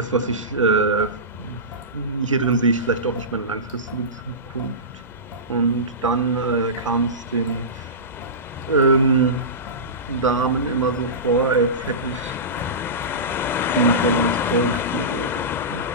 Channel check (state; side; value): normal; both; correlation -0.19